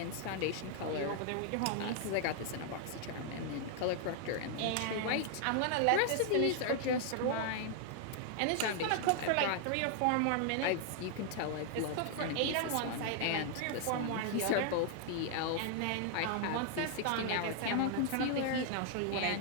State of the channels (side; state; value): both; different; correlation 0.00